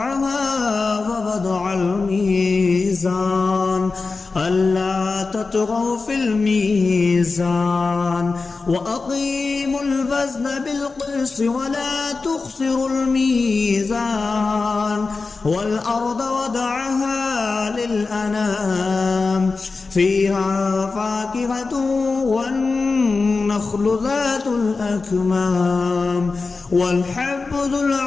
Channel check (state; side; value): quieter; right; 4.1 dB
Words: ووضع الميزان ألا تطغوا في الميزان وأقيموا الوزن بالقسط ولا تخسروا الميزان والأرض وضعها للأنام فيها فاكهة والنخل ذات الأكمام والحب ذو